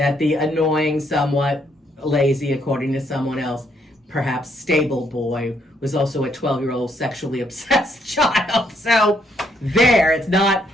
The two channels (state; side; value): normal; both; correlation 0.72